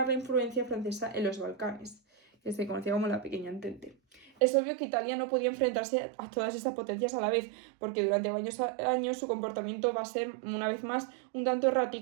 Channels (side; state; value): left; drops out; at 4.3 s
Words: la influencia francesa en los Balcanes, que se conocía como la Pequeña Entente. Es obvio que Italia no podía enfrentarse a todas estas potencias a la vez, porque durante varios años su comportamiento va a ser, una vez más, un tanto